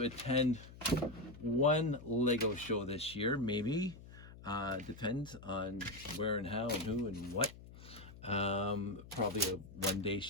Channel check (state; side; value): noise; left; hum, 17 dB below the sound